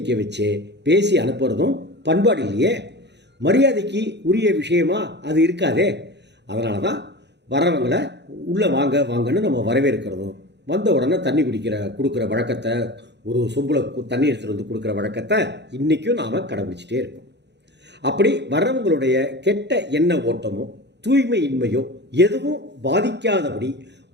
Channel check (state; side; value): late; left; 0.50 ms